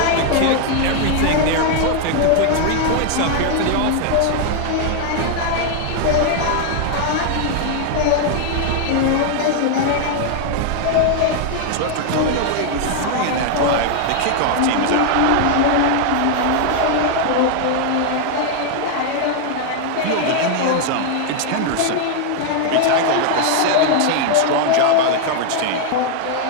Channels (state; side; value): different; both; correlation 0.00